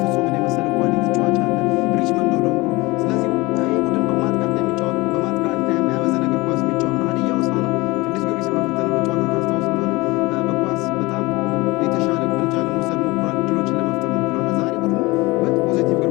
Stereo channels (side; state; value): right; quieter; 22.6 dB